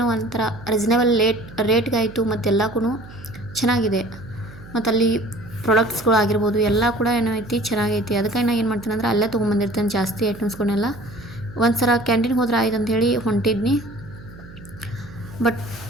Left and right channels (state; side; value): noise; right; hum, 18 dB below the sound